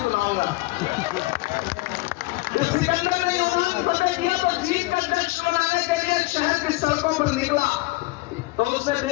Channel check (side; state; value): right; quieter; 22.1 dB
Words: सुनाऊंगा। जब सिकंदर ने यूनान फतेह किया तो जीत का जश्न मनाने के लिए शहर की सड़कों पर निकला, तो उसने